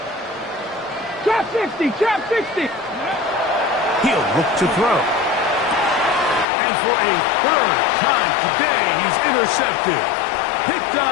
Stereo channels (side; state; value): right; drops out; at 6.5 s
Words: Trap 60. Trap 60. He'll look to throw. And for a 3rd time today, he's intercepted. Picked